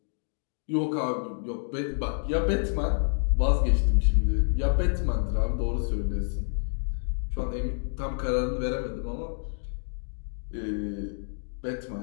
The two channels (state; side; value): silent; right; digital silence